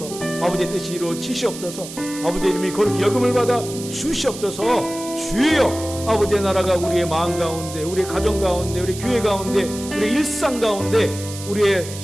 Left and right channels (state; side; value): noise; right; hiss, 12 dB below the sound